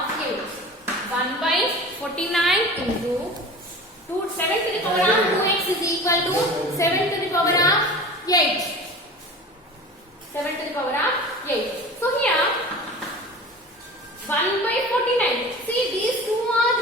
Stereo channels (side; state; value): both; normal; correlation 0.36